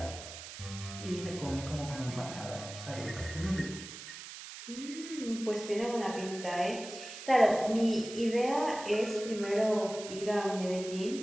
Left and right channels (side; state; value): right; noise; hiss, 12 dB below the sound